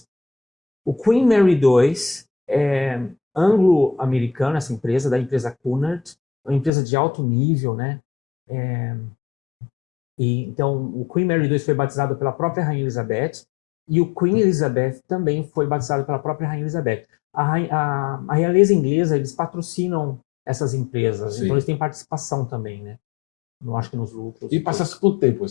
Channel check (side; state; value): right; drops out; at 6.7 s